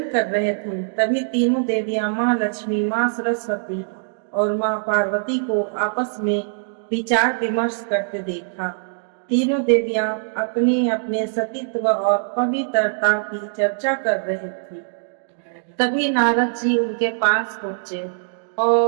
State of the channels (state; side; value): silent; left; digital silence